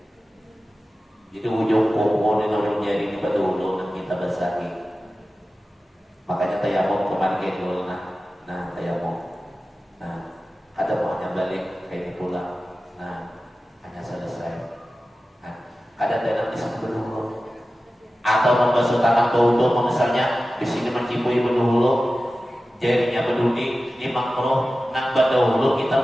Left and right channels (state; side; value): normal; both; correlation 0.95